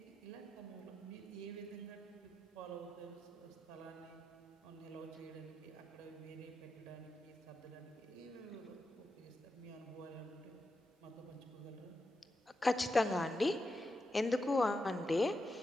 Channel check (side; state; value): both; normal; correlation 0.87